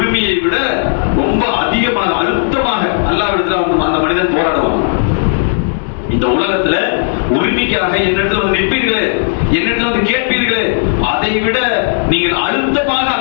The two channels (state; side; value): silent; right; digital silence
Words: விட ரொம்ப அதிகமாக அழுத்தமாக அல்லாஹ்விடத்துல அந்த மனிதன் போராடுவான். இந்த உலகத்துல உரிமைக்காக என்னிடத்துல வந்து நிற்பீர்களே, என்னிடத்துல வந்து கேட்பீர்களே, அதை விட நீங்கள் அழுத்தமாக